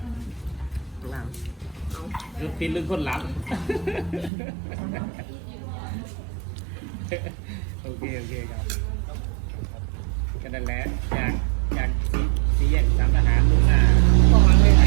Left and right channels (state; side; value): drops out; left; at 4.3 s